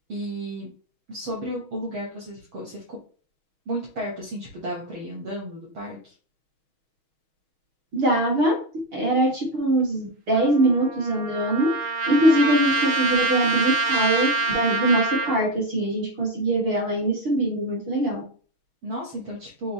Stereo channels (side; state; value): left; late; 6.3 ms